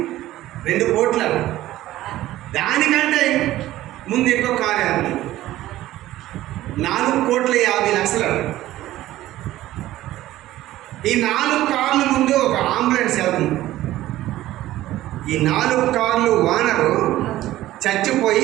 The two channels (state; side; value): quieter; left; 15.1 dB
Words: 2 కోట్ల. దానికంటే ముందు ఇంకొక కారు వెళ్తుంది, 4,50,00,000. ఈ 4 కార్ల ముందు ఒక అంబులెన్స్ వెళ్తుంది. ఈ 4 కార్లు ఓనరు చచ్చిపోయి